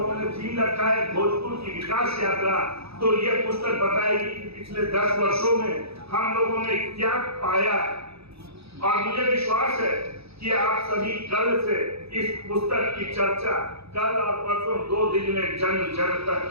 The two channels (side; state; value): left; late; 0.78 ms